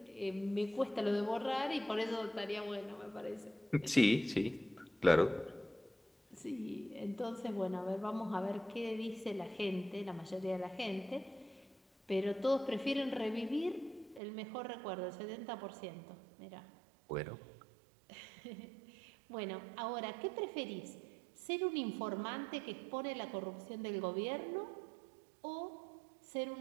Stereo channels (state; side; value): drops out; left; at 14.2 s